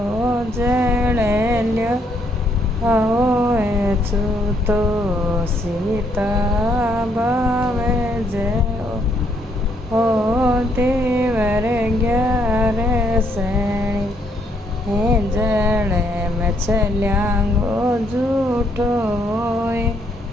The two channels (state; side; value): normal; both; correlation 0.71